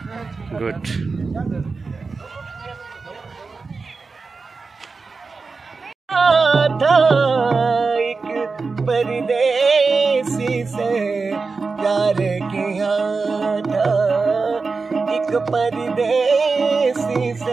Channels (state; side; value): quieter; left; 4.3 dB